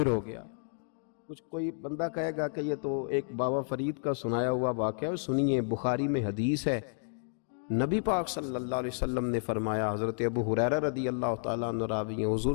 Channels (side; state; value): right; silent; digital silence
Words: ہو گیا۔ کچھ کوئی بندہ کہے گا کہ یہ تو ایک بابا فرید کا سنایا ہوا واقعہ ہے، سنیے، بخاری میں حدیث ہے، نبی پاک صلی اللہ علیہ وسلم نے فرمایا، حضرت ابو ہریرہ رضی اللہ تعالیٰ عنہ راوی ہیں، حضور